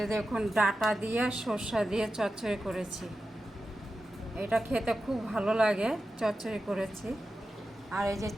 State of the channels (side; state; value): both; normal; correlation 0.92